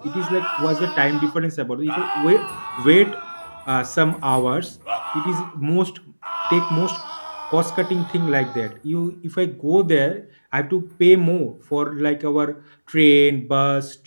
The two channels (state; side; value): inverted; both; correlation -1.00